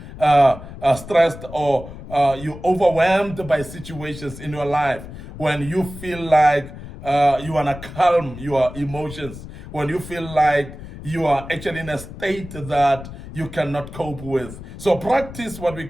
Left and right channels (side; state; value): left; noise; rumble, 13 dB below the sound